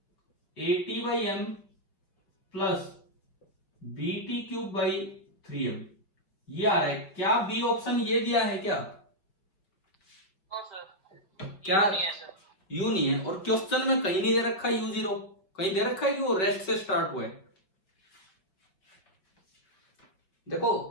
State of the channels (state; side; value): late; right; 5.2 ms